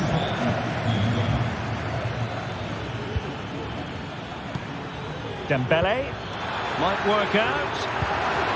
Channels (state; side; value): identical; both; correlation 1.00